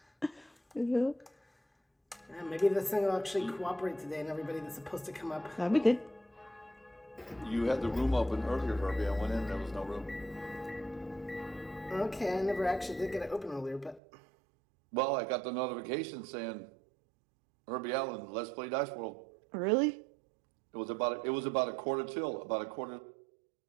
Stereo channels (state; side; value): drops out; left; at 14.0 s